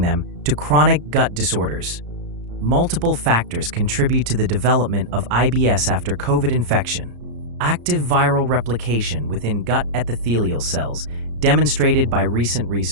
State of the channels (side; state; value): left; late; 34 ms